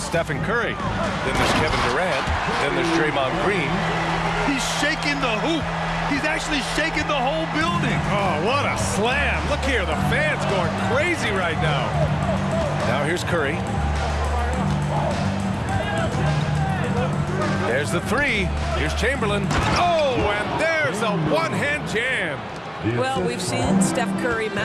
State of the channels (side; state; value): both; identical; correlation 1.00